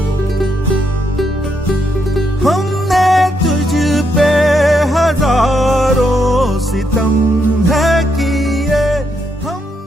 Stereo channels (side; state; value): both; normal; correlation 0.78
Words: हमने तुझ पे हजारों सितम है किए